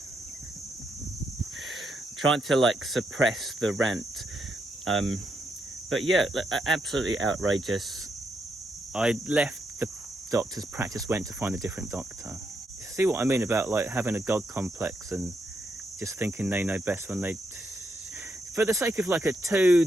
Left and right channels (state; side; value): normal; both; correlation 0.80